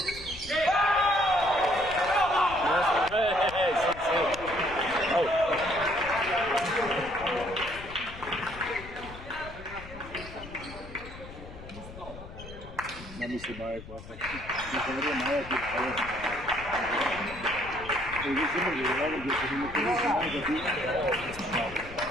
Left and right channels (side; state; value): left; noise; rumble, 14 dB below the sound